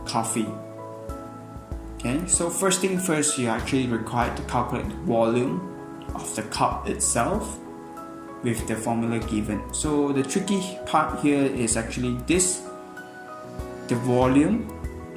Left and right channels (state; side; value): identical; both; correlation 1.00